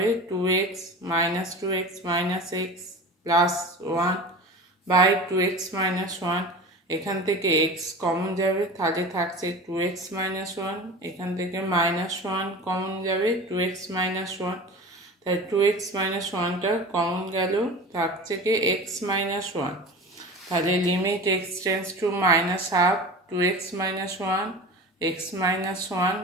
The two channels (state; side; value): normal; both; correlation 0.34